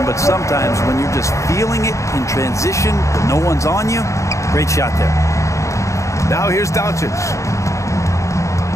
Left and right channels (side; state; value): right; late; 0.15 ms